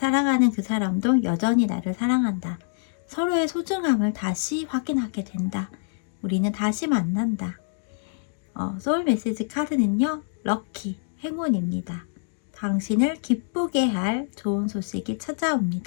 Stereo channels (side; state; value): right; silent; digital silence